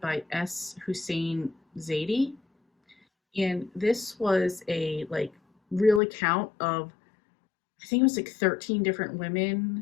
by S. Hussein Zaidi. And this was a real account of, I think it was 13 different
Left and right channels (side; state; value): right; drops out; at 6.0 s